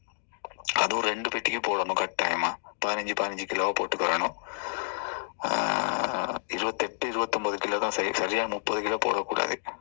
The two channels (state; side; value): silent; right; digital silence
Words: அதுவும் 2 பெட்டிக்கு போடணும் கட்டாயமா. 15 கிலோவை போட்டுக்கிறணும். 28-29 கிலோ தான் சரி. சரியாக 30 கிலோ போடக்கூடாது,